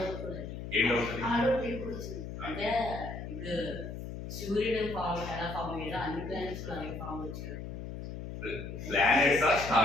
ఏం డౌట్ అంటే ఇప్పుడు సూర్యుడు ఫామ్ ఎలా ఫామ్ అయ్యాడో అన్ని ప్లానెట్స్ అలాగే ఫామ్ వచ్చాయి. ప్లానెట్స్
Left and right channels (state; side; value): noise; left; hum, 8 dB below the sound